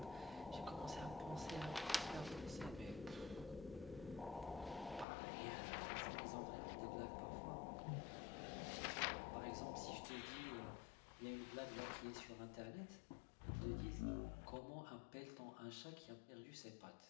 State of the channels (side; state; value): right; drops out; at 5.1 s